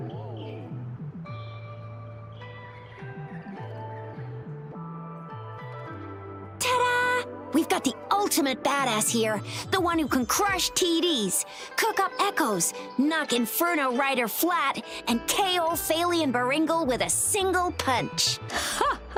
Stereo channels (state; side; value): identical; both; correlation 1.00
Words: Ta-da! We've got the ultimate badass here, the one who can crush TDs, cook up echoes, knock Inferno Rider flat, and KO Phalian Baringle with a single punch. Ha